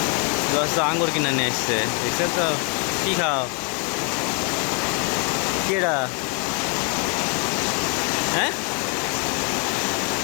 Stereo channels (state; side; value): quieter; right; 37.8 dB